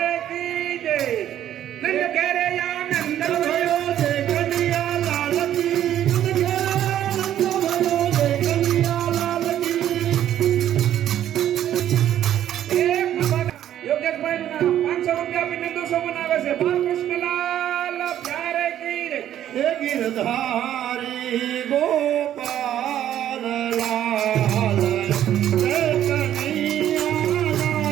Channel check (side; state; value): left; quieter; 11.4 dB